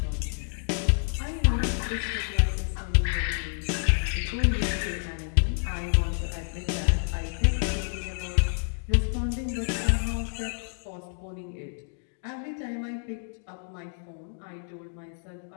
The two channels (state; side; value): silent; right; digital silence